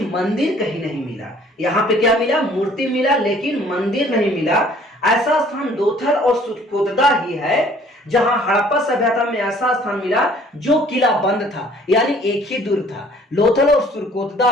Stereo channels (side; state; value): both; normal; correlation 0.56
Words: मंदिर कहीं नहीं मिला। यहाँ पे क्या मिला? मूर्ति मिला लेकिन मंदिर नहीं मिला। ऐसा स्थान लोथल और सुरकोतदा ही है जहां हड़प्पा सभ्यता में ऐसा स्थान मिला जो किला बंद था, यानी एक ही दुर्ग था। लोथल और सुरकोतदा